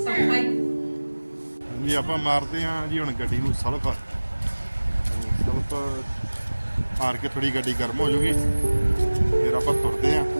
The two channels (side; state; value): both; inverted; correlation -1.00